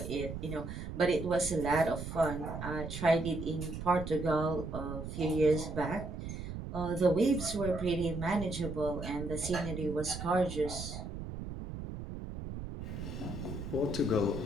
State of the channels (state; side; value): noise; right; rumble, 7 dB below the sound